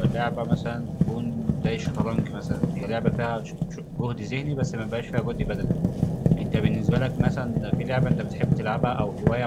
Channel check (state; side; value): identical; both; correlation 1.00